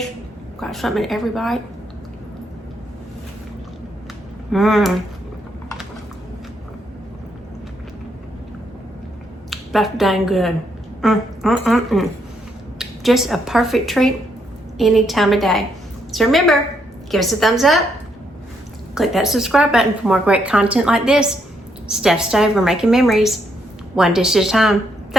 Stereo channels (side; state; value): both; normal; correlation 0.75